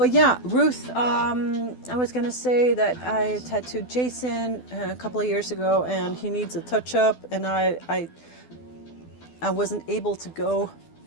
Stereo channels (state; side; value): late; right; 12 ms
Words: yeah, Ruth, I was gonna say that I tattooed Jason a couple of years ago, and he needs a touch-up, and I wasn't able to go